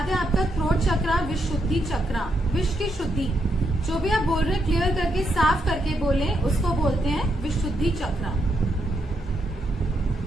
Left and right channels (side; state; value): both; normal; correlation 0.80